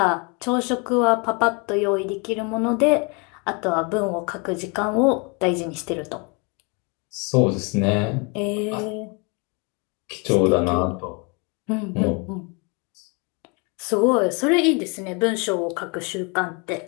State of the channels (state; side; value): quieter; right; 32.5 dB